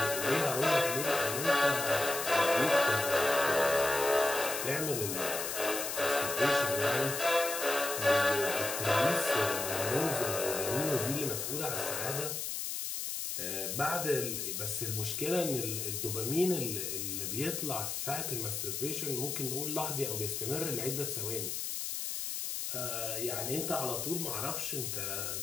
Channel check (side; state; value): left; noise; hiss, 3 dB below the sound